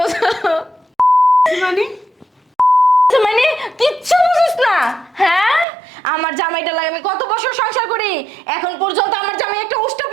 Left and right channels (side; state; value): left; drops out; at 5.7 s